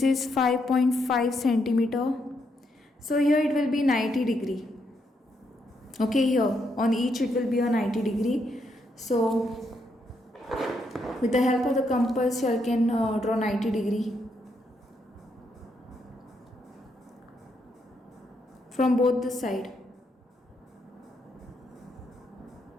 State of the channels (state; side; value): normal; both; correlation 0.78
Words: is 5.5 centimeter. So here it will be 90 degree. Okay, here on each it will be a 90 degree. So with the help of the compass you can draw 90 degree from both the side.